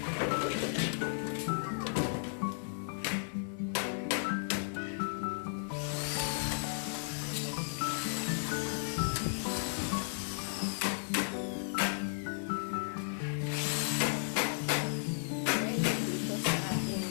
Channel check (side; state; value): right; silent; 55 dB below the other